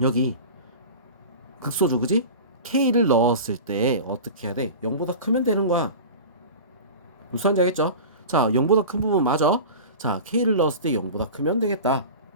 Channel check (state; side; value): inverted; both; correlation -0.33